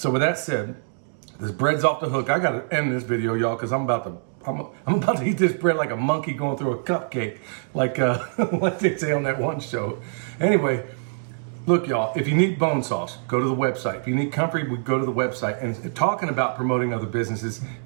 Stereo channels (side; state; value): left; silent; digital silence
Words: with that said, this bread's off the hook. I gotta end this video, y'all, because I'm about to eat this bread like a monkey going through a cupcake, like like they say on that one show. Anyway, look, y'all, if you need bone sauce, go to the website. If you need comfrey, we go to the website. And talking about promoting other businesses,